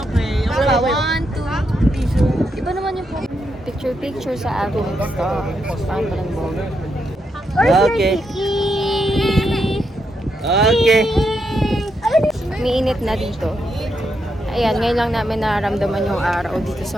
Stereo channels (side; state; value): both; normal; correlation 0.81